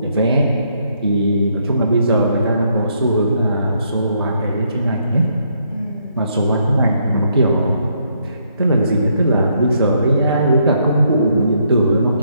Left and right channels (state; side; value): inverted; both; correlation -0.73